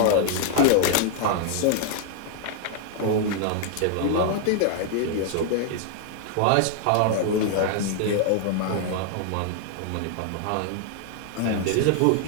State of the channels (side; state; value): both; different; correlation 0.00